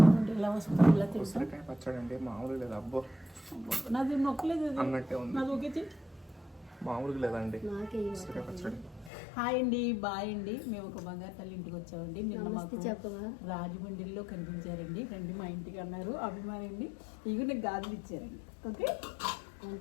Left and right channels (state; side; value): drops out; right; at 9.1 s